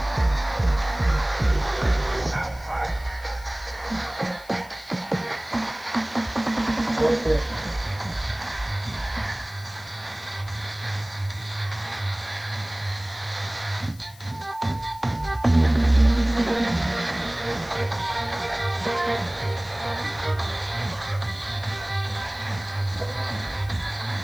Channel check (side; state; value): left; noise; hiss, 22 dB below the sound